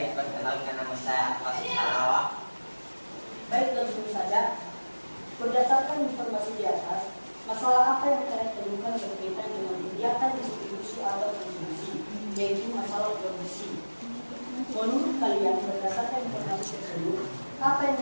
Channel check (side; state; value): both; inverted; correlation -1.00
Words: perkenalkan nama saya Akas Halawa. Baik, langsung saja. Berdasarkan informasi di atas, masalah apa yang kalian temukan berkaitan dengan kegiatan distribusi atau konsumsi, yaitu masalah produksi. Menurut kalian, berdasarkan informasi tersebut, apa yang